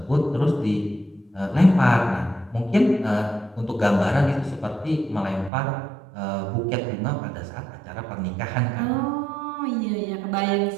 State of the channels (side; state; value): left; drops out; at 5.5 s